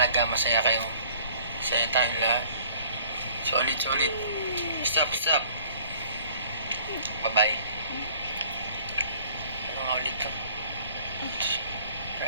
masaya kayo. Masaya tayong lahat. Solid. Stop. Bye-bye. Ano nga ulit to?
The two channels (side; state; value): both; inverted; correlation -0.53